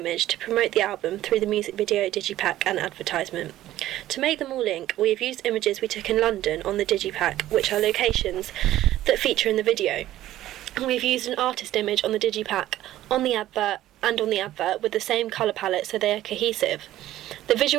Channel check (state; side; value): quieter; left; 14.0 dB